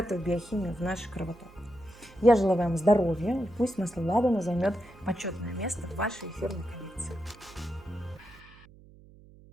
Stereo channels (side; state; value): right; noise; hum, 23 dB below the sound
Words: биохимию в наш кровоток. Я желаю вам здоровья, и пусть масло ладана займет почетное место в вашей эфирной коллекции.